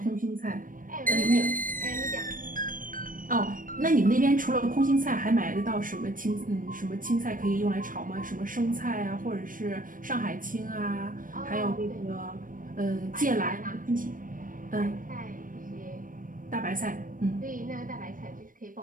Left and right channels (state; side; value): late; left; 0.40 ms